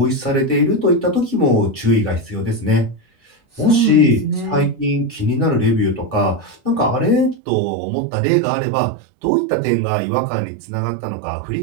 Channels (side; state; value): left; drops out; at 7.4 s